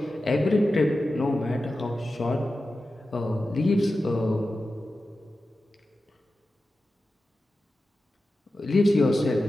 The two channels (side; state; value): both; normal; correlation 0.93